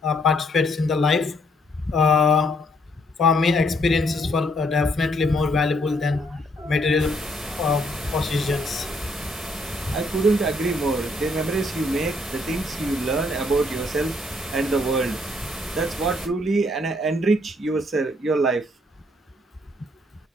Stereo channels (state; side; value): normal; both; correlation 0.69